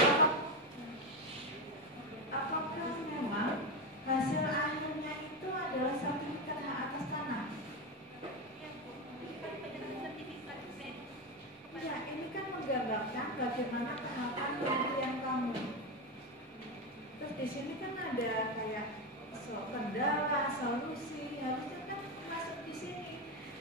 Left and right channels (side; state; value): both; normal; correlation 0.13